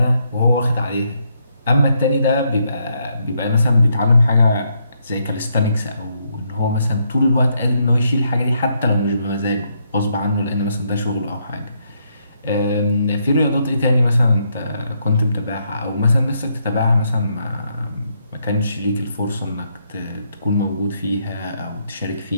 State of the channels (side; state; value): both; inverted; correlation -0.76